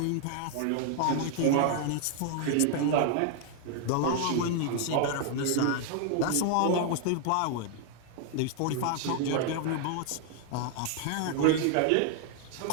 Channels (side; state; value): both; different; correlation 0.00